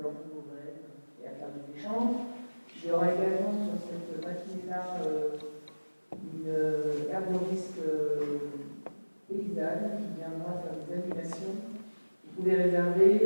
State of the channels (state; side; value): inverted; both; correlation -1.00